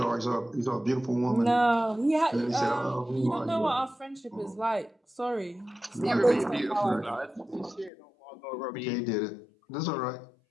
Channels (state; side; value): drops out; right; at 7.9 s